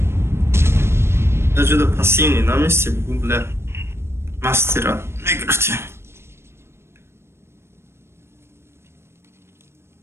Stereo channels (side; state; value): left; late; 0.12 ms